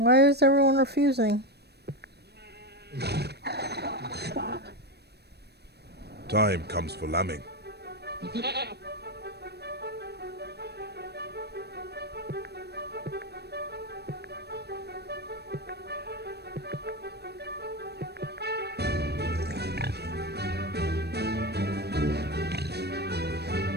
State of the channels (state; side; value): late; left; 0.47 ms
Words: is everyone refusing? Time comes for lambing. But